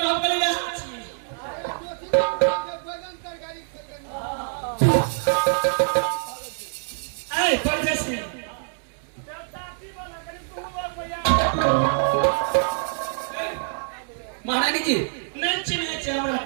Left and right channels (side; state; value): left; silent; digital silence